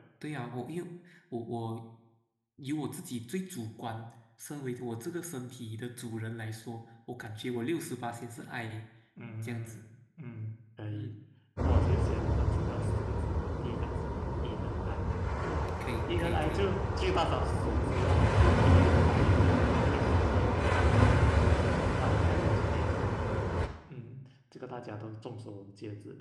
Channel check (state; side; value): identical; both; correlation 1.00